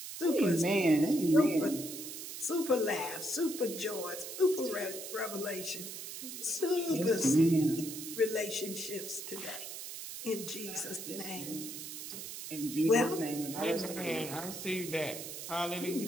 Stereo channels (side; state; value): right; noise; hiss, 9 dB below the sound